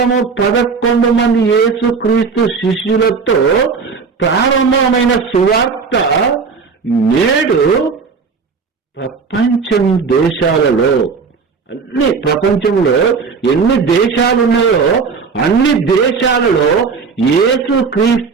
మంది యేసుక్రీస్తు శిష్యులతో ప్రారంభమైన సువార్త నేడు ప్రపంచంలో ఎన్ని దేశాలు ఉన్నాయో అన్ని దేశాలలో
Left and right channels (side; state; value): left; quieter; 5.2 dB